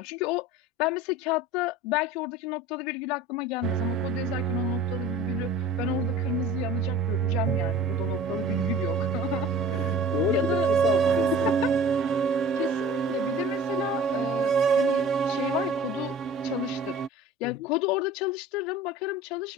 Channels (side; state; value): both; normal; correlation 0.43